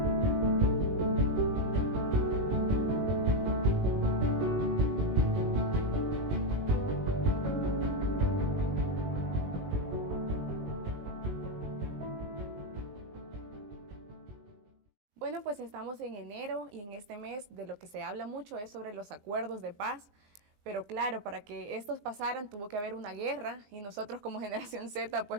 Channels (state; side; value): late; left; 20 ms